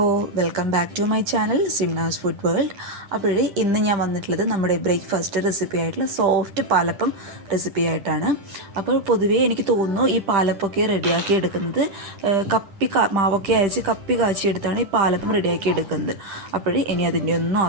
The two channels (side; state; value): left; late; 10 ms